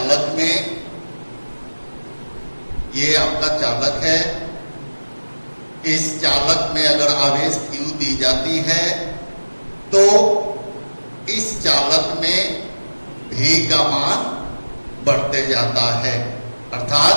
में, ये आपका चालक है, इस चालक में अगर आवेश Q दी जाती है तो इस चालक में V का मान बढ़ते जाता है।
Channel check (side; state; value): both; inverted; correlation -1.00